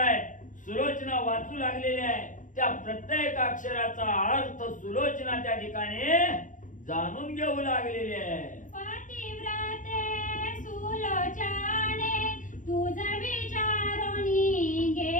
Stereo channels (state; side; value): late; right; 0.37 ms